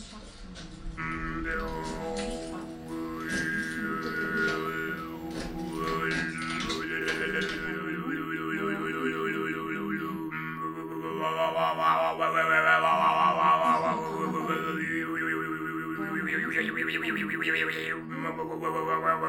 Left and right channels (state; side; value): identical; both; correlation 1.00